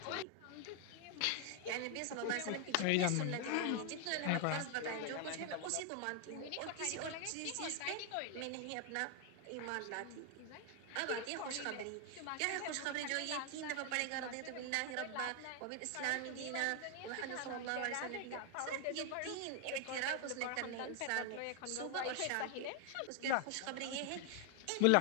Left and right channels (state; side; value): different; both; correlation 0.00